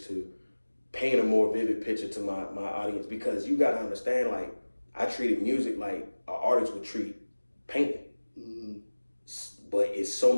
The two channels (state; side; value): inverted; both; correlation -1.00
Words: to paint a more vivid picture to my audience, because you gotta understand, like, I treated music like an artist would treat painting. But it's so